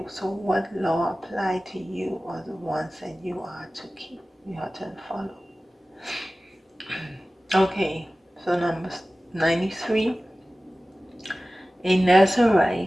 So what law apply to you are the ones that you are to keep, you are to follow. Okay, so number 93. A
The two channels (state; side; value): normal; both; correlation 0.96